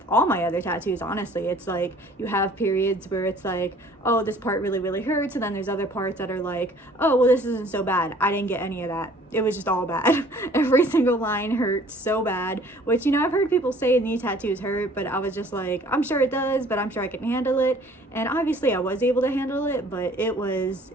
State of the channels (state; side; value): normal; both; correlation 0.54